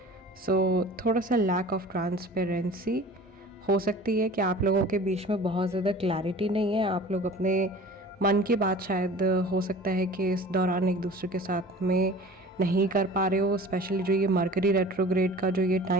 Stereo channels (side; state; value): both; normal; correlation 0.43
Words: सो थोड़ा सा लैक ऑफ ट्रांसपेरेंसी हो सकती है कि आप लोगों के बीच में बहुत ज़्यादा क्लैरिटी नहीं है। आप लोग अपने मन की बात शायद हो सकता है कि इस दौरान एक दूसरे के साथ में नहीं कर पा रहे हो, स्पेशली जो ये मरकरी रेट्रोग्रेड का जो ये